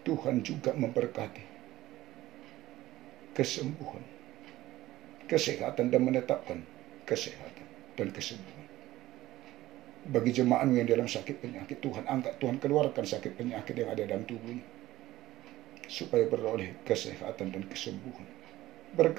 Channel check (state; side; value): quieter; left; 16.0 dB